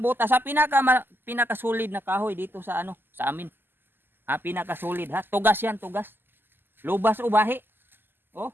butas ha. Pinakasolid na kahoy dito sa sa amin. Ha, pinakasolid ha. Tugas yan, tugas. Lubas o bahi. Oh.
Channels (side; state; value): left; late; 0.096 ms